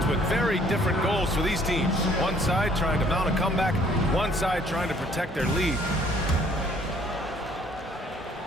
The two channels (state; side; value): normal; both; correlation 0.60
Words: with very different goals for these teams. One side trying to mount a comeback, one side trying to protect their lead.